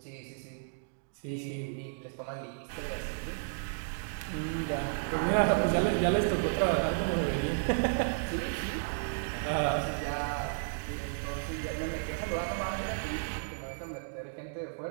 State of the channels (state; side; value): silent; left; digital silence